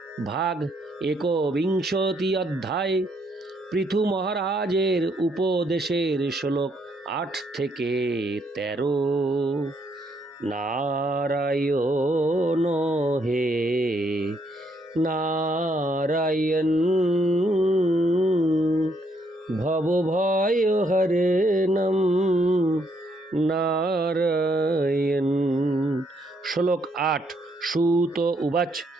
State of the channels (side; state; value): both; normal; correlation 0.72